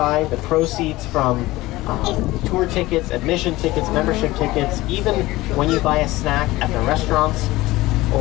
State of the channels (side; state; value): right; quieter; 18.7 dB